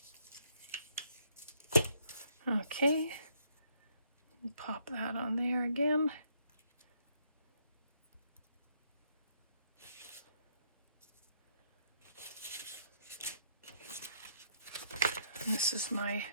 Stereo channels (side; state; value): both; inverted; correlation -0.70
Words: Okay, pop that on there again. This is